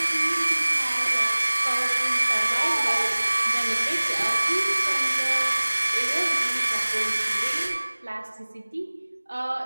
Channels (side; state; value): both; inverted; correlation -1.00